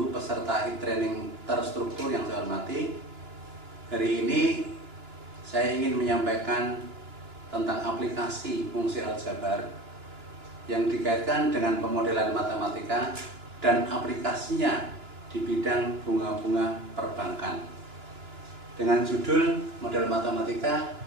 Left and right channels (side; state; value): left; late; 2.9 ms